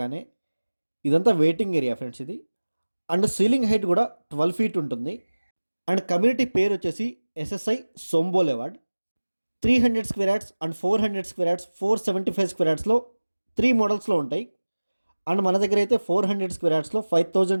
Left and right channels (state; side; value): inverted; both; correlation -1.00